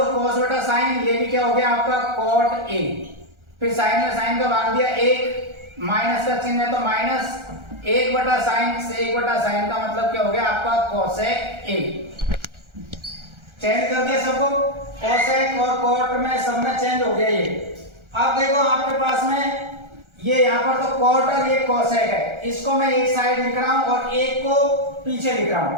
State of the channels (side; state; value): left; late; 1.4 ms